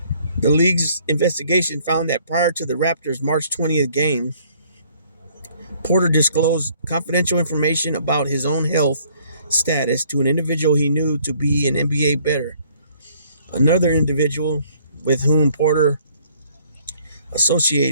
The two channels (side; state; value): both; inverted; correlation -0.61